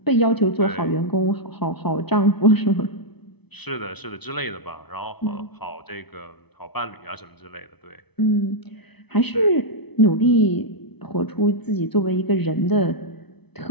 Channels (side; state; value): right; late; 0.99 ms